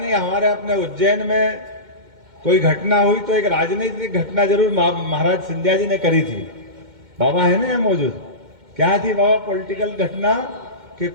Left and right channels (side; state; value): left; late; 2.1 ms